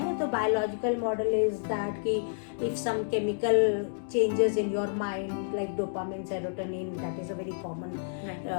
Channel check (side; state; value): right; silent; digital silence